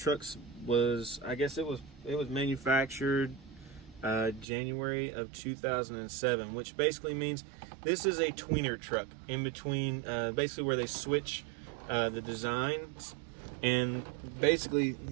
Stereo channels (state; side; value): drops out; left; at 4.5 s